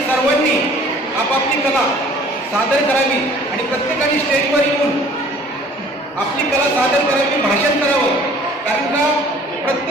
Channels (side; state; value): both; normal; correlation 0.52